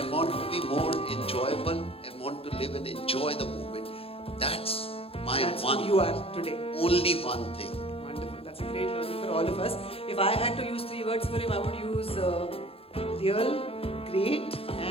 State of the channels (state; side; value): late; right; 0.28 ms